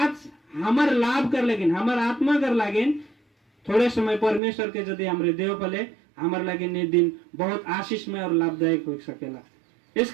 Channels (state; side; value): drops out; left; at 4.4 s